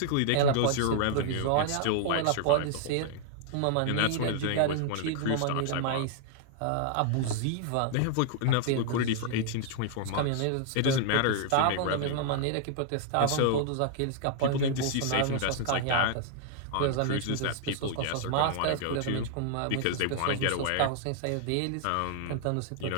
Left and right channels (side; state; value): both; different; correlation -0.01